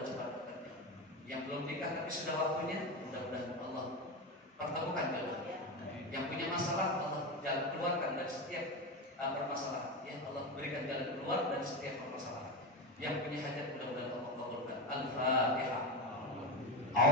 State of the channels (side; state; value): both; normal; correlation 0.17